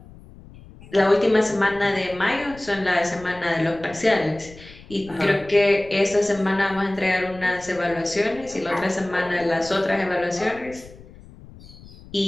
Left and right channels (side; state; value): left; noise; rumble, 20 dB below the sound